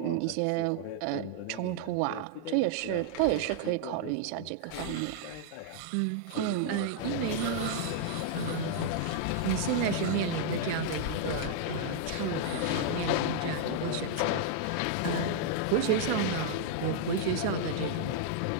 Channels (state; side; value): different; both; correlation -0.01